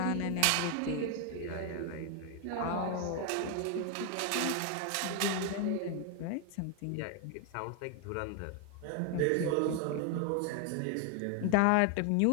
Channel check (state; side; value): different; both; correlation 0.01